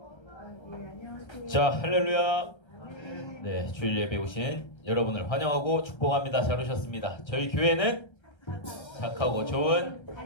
자, 할렐루야. 네, 주일 예배 오신 여러분을 환영하고 축복합니다. 잘 오셨습니다. 저희 교회는 착하고 좋은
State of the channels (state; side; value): late; right; 1.3 ms